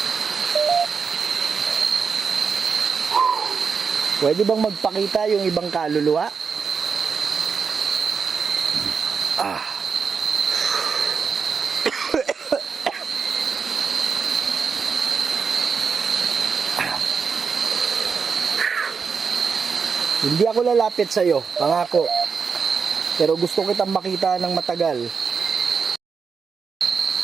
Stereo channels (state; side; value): quieter; left; 5.7 dB